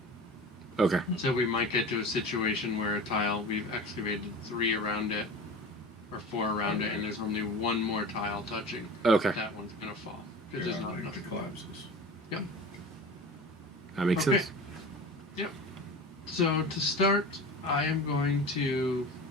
Okay. So we might get to a situation where a tile, we've excavated 3 around it, or 4 around it, and there's only one more tile touching. Okay. That one's going to fall because there's not enough. It collapses. Yep. That makes sense. Yep. So to start, I am going to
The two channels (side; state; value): both; normal; correlation 0.34